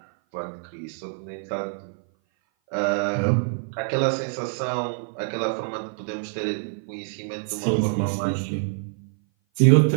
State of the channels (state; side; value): silent; left; 57 dB below the other